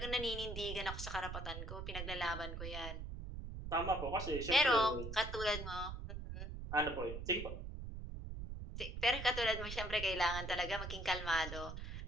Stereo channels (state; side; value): noise; right; rumble, 6 dB below the sound